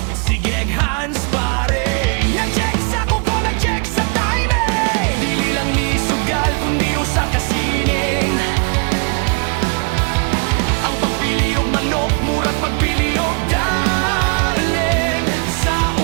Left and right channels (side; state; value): left; quieter; 35.4 dB